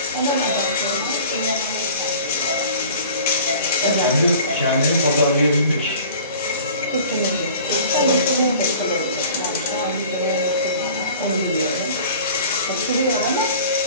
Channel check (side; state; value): both; inverted; correlation -0.45